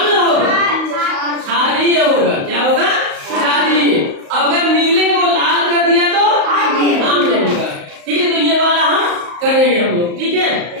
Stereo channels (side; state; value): left; late; 35 ms